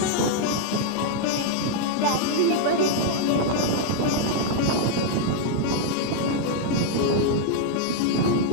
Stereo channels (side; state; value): both; different; correlation -0.01